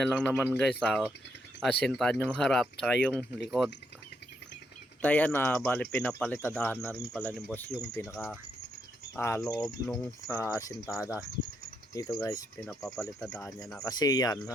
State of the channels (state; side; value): normal; both; correlation 0.78